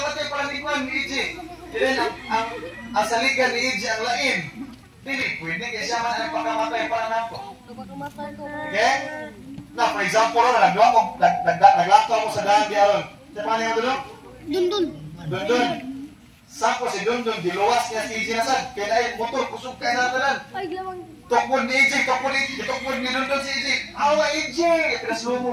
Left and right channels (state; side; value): identical; both; correlation 1.00